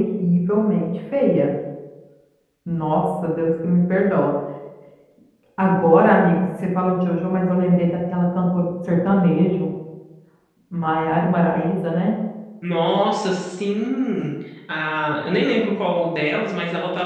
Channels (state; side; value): identical; both; correlation 1.00